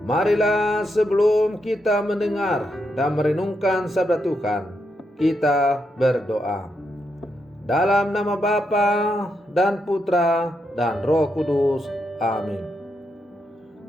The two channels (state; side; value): normal; both; correlation 0.82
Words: Marilah sebelum kita mendengar dan merenungkan sabda Tuhan, kita berdoa. Dalam nama Bapa dan Putra dan Roh Kudus. Amin.